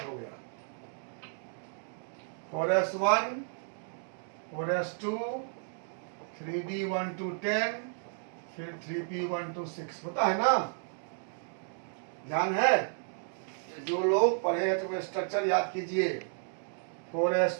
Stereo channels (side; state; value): left; silent; 56 dB below the other